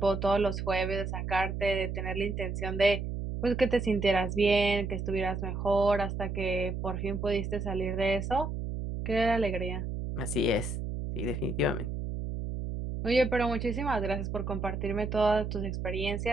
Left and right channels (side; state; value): right; noise; hum, 4 dB below the sound